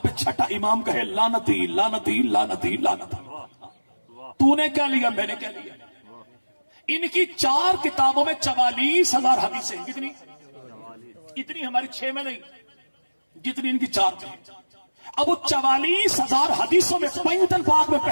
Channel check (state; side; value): inverted; both; correlation -1.00